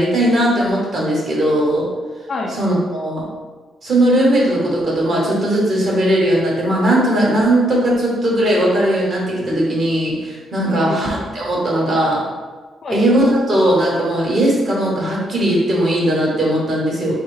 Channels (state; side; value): normal; both; correlation 0.73